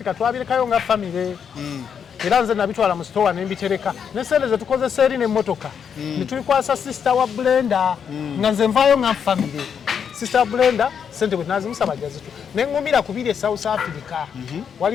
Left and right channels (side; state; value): right; quieter; 7.4 dB